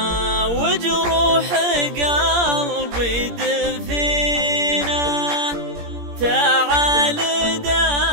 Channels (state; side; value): late; left; 17 ms